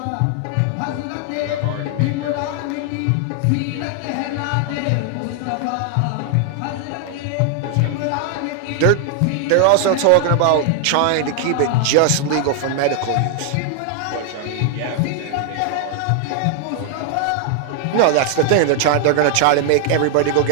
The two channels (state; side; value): different; both; correlation 0.00